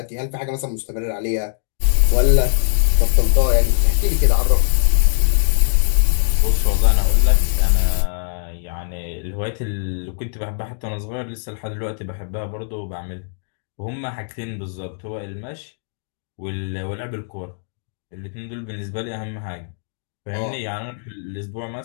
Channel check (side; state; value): right; silent; digital silence